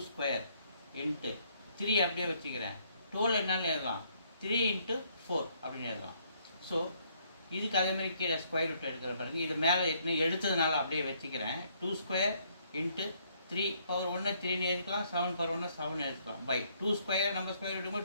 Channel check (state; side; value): inverted; both; correlation -0.68